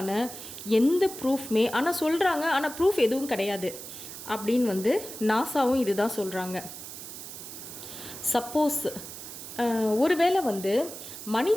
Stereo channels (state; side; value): noise; right; hiss, 11 dB below the sound